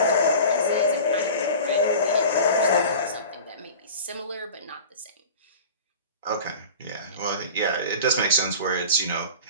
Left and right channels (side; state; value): both; inverted; correlation -0.37